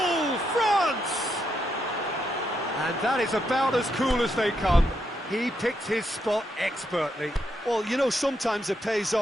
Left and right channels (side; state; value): both; normal; correlation 0.80